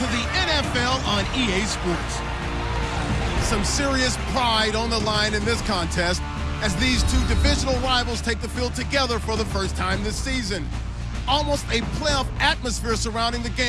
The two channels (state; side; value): identical; both; correlation 1.00